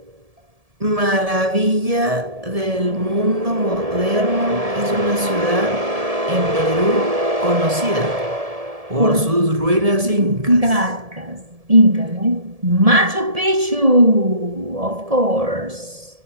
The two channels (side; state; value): left; late; 1.7 ms